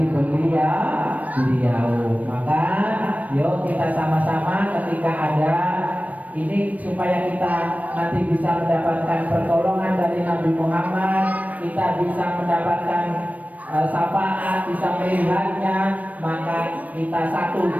beliau. Maka yuk kita sama-sama ketika ada ini supaya kita nanti bisa mendapatkan pertolongan dari Nabi Muhammad, kita bisa mendapatkan syafaat, bisa melihatnya, maka kita satu,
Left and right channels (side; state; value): left; late; 0.072 ms